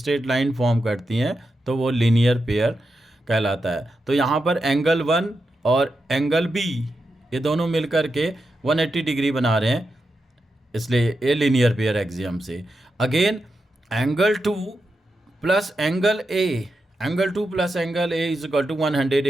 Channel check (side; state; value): both; normal; correlation 0.88